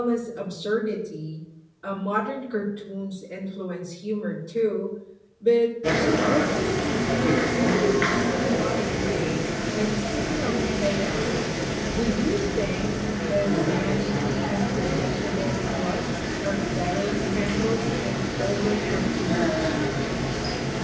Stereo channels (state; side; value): identical; both; correlation 1.00